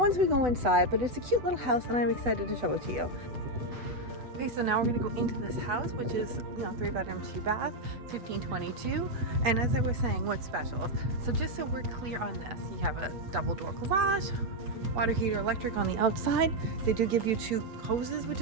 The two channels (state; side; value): late; left; 8.2 ms